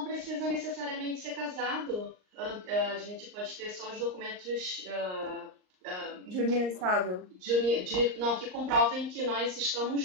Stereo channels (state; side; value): late; left; 38 ms